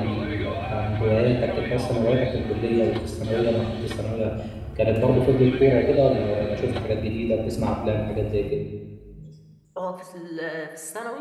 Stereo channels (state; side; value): identical; both; correlation 1.00